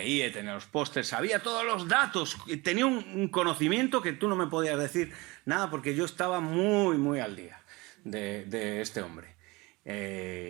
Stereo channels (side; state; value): left; quieter; 23.6 dB